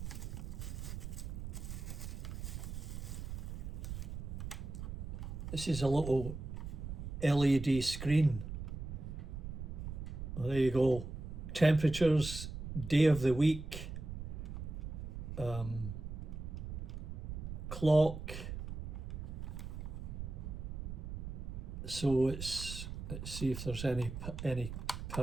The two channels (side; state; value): right; noise; rumble, 7 dB below the sound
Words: This is a little LED screen. Well, there you go. Temperatures, day of the week, clock. So let's see if there's any